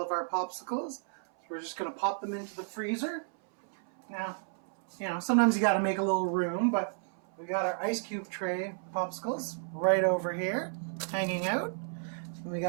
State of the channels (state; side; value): silent; left; 56 dB below the other